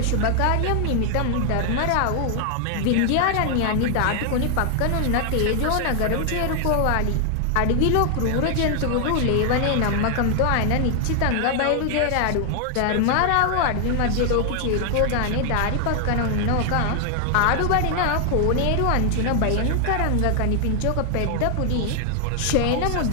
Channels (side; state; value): both; different; correlation 0.00